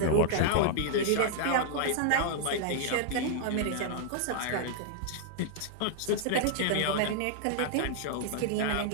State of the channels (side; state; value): both; different; correlation -0.01